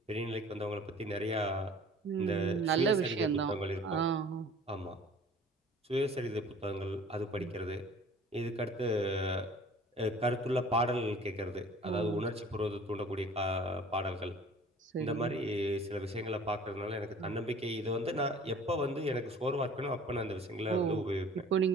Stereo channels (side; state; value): both; normal; correlation 0.48